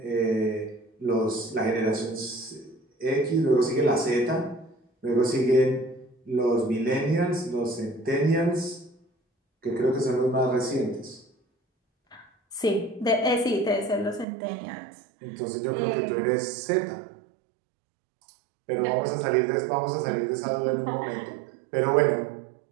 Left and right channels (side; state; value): left; drops out; at 14.2 s